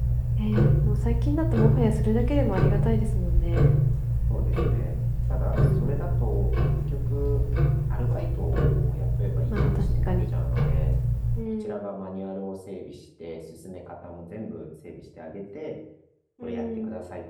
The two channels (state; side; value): identical; both; correlation 1.00